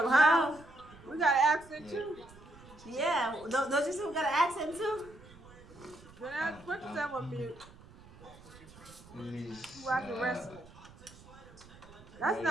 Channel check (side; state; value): right; noise; rumble, 21 dB below the sound